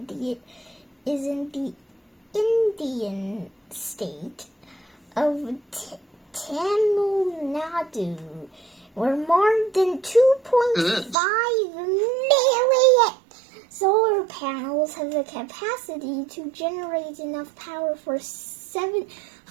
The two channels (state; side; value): drops out; left; at 11.2 s